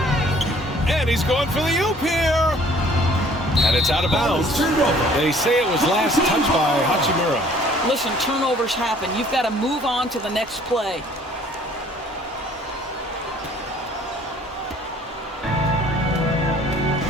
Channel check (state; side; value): normal; both; correlation 0.56